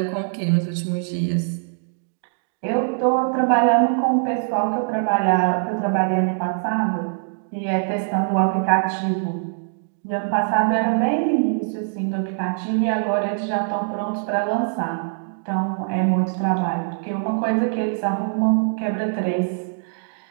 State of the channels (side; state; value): left; silent; digital silence